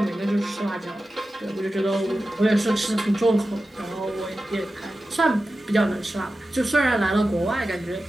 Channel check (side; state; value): both; normal; correlation 0.93